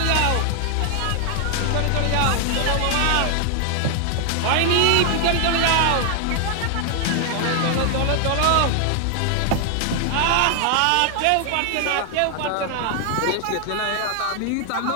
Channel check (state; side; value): different; both; correlation 0.00